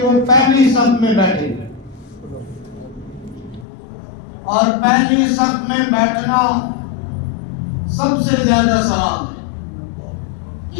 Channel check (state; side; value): drops out; right; at 3.7 s